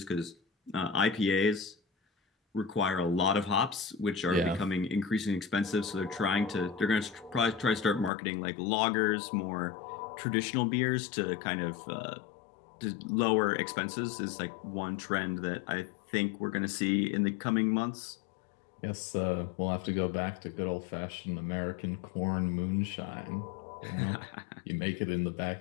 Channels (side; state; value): right; drops out; at 8.1 s